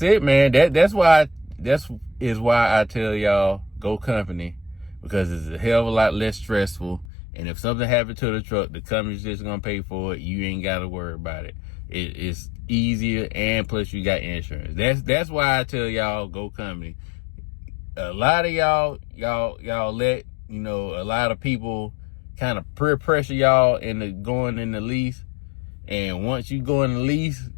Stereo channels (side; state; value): right; drops out; at 7.1 s